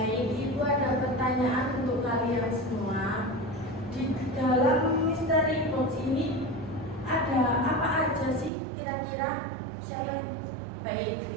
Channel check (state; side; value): drops out; left; at 8.5 s